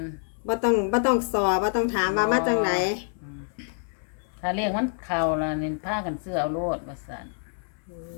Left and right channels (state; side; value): silent; right; 60 dB below the other